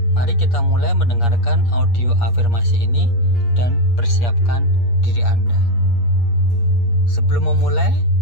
mari kita mulai mendengarkan audio afirmasi ini dan persiapkan diri Anda. Sebelum memulai,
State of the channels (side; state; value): right; late; 8.5 ms